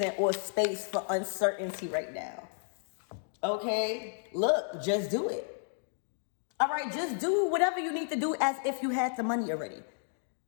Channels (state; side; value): silent; right; digital silence